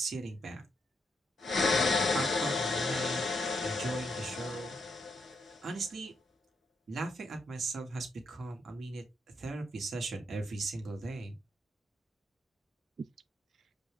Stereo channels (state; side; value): normal; both; correlation 0.79